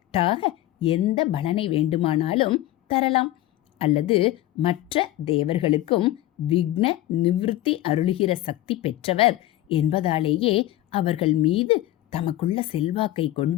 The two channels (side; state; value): right; quieter; 14.9 dB